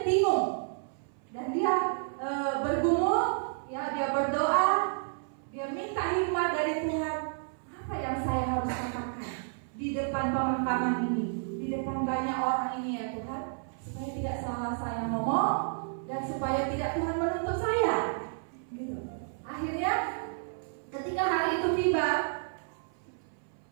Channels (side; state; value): left; silent; 57 dB below the other